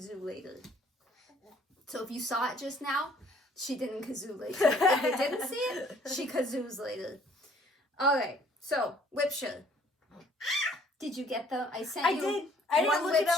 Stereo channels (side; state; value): both; normal; correlation 0.60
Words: later. So if you saw it just now, she didn't kazoo later. If you didn't see it, she kazoos later. Alright, so WIP SHARE. Did you get them? I sent you did. I didn't one look WIP at